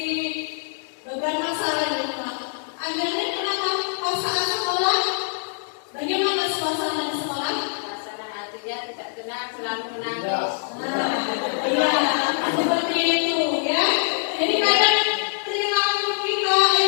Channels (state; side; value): silent; right; digital silence